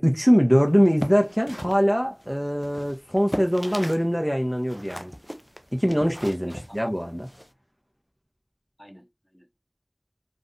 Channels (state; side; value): identical; both; correlation 1.00